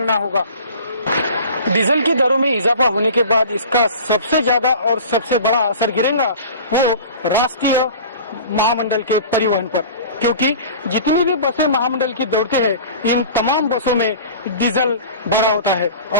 होगा। डीजल की दरों में इजाफा होने के बाद इसका सबसे ज्यादा और सबसे बड़ा असर गिरेगा वो राष्ट्रीय महामंडल के परिवहन पर, क्योंकि जितनी भी बसें महामंडल की दौड़ती है इन तमाम बसों में डीजल भरा होता है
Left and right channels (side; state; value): both; inverted; correlation -0.40